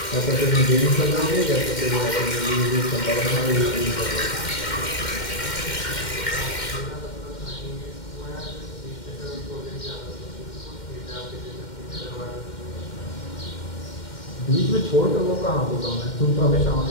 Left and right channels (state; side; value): late; right; 2.1 ms